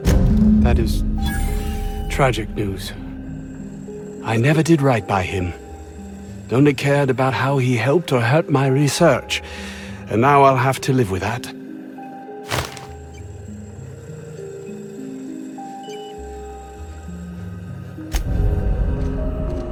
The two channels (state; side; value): identical; both; correlation 1.00